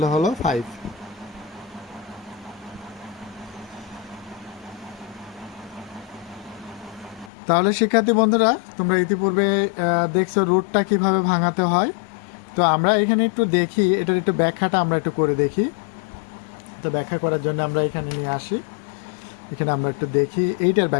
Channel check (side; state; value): right; drops out; at 7.3 s